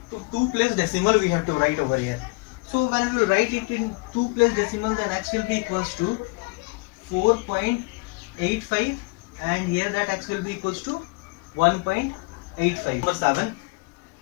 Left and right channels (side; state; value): right; quieter; 26.8 dB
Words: to place decimal we have to write over here. So when we write it in 2 place decimal, then x will be equals to 4.85, and here that x will be equals to 1.85. Number 7.